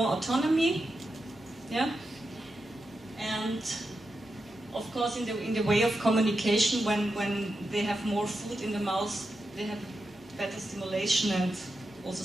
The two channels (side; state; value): both; normal; correlation 0.88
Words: autonomy, yeah, and of course in the way of communication, when they have more food in the mouth, they have better stimulation and also